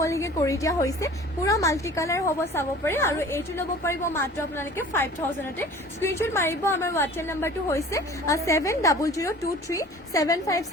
কৰি দিয়া হৈছে পুৰা মাল্টি কালাৰ হ'ব চাব পাৰে আৰু এইটো ল'ব পাৰিব মাত্ৰ আপোনালোকে 5,000তে স্ক্ৰীনশ্বট মাৰিব আমাৰ হোৱাটছএপ নাম্বাৰটো হৈছে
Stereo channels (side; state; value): both; normal; correlation 0.45